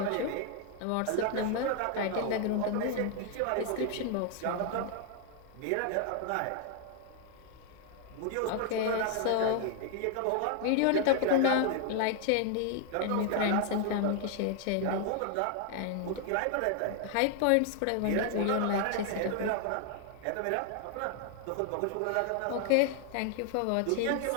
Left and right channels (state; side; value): different; both; correlation 0.00